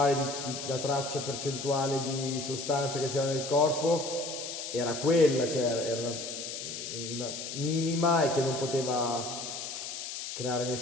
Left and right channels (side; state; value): left; noise; hiss, 7 dB below the sound